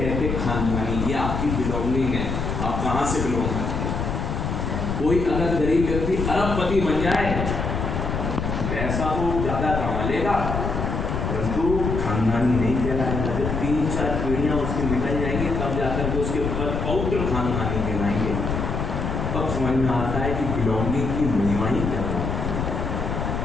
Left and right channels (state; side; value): noise; left; rumble, 2 dB below the sound